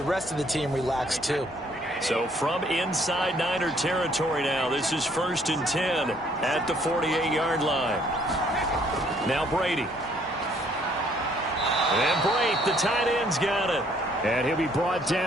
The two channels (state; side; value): normal; both; correlation 0.63